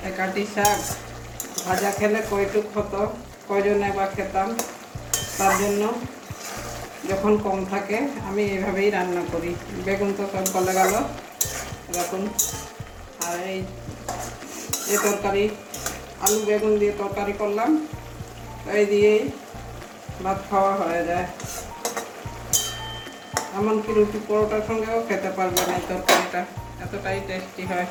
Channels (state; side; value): identical; both; correlation 1.00